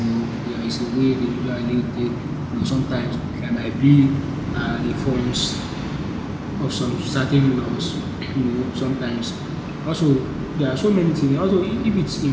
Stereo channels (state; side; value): identical; both; correlation 1.00